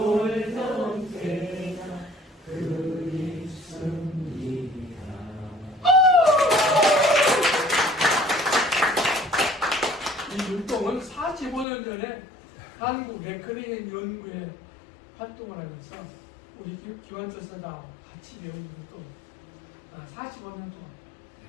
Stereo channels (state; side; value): drops out; right; at 11.7 s